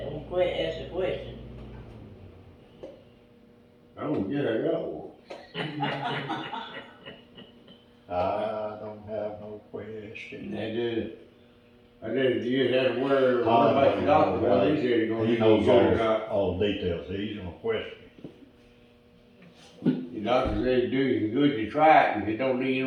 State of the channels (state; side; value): identical; both; correlation 1.00